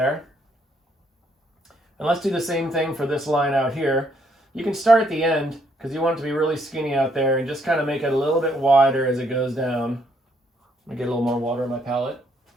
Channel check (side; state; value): both; normal; correlation 0.70